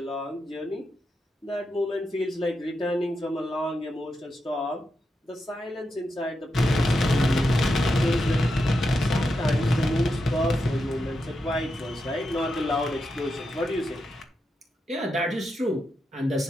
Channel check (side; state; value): both; normal; correlation 0.86